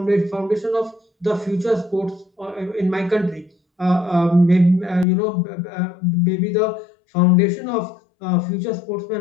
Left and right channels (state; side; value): drops out; right; at 5.1 s